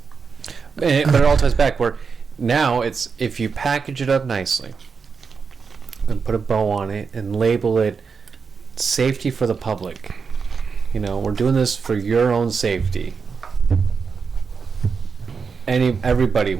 But it all ties back where now it's, if you package it up nicely and put a bow on it and label it safety for the public, we're doing this for your own safety, everybody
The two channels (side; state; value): left; quieter; 5.5 dB